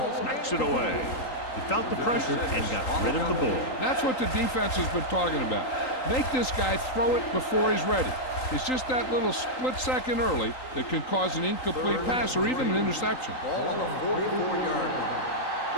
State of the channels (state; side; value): late; right; 3.8 ms